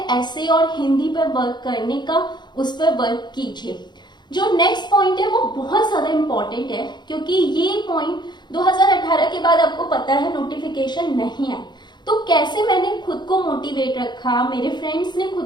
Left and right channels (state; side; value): late; right; 0.21 ms